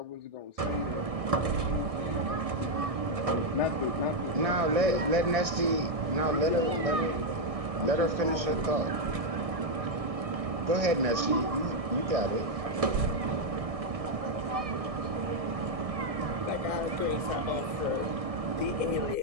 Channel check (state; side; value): late; left; 1.6 ms